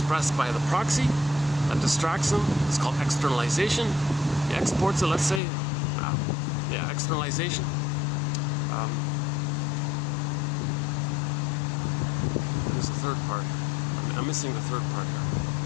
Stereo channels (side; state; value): right; drops out; at 5.4 s